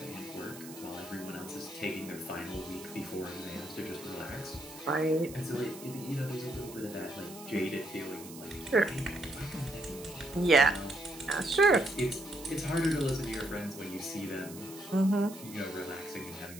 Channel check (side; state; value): right; noise; hiss, 15 dB below the sound